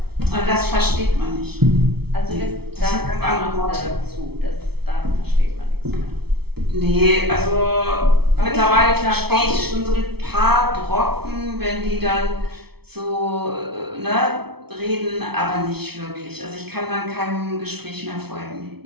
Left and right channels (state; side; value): late; left; 0.96 ms